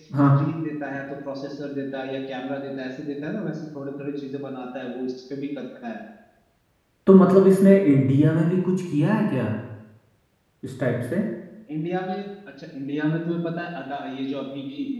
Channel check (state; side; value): identical; both; correlation 1.00